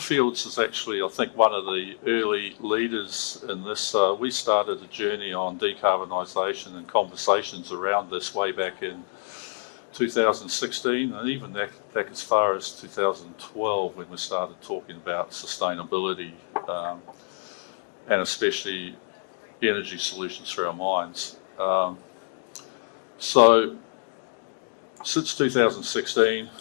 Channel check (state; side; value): silent; right; digital silence